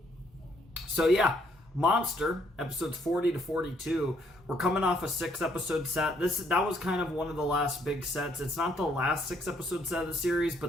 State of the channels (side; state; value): both; normal; correlation 0.69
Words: So yeah. Monster, episodes 40 to 42. We're coming off a 6-episode set. That was kind of one of the last big sets. It's not the last 6-episode set of the series,